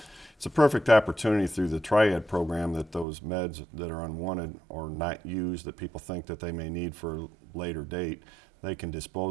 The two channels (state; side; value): drops out; left; at 3.1 s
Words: it's a perfect opportunity through the Triad program that those meds that are unwanted or not used that people think that they may need for a later date, they can